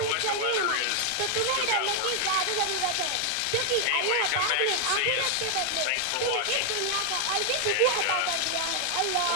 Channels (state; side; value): different; both; correlation 0.00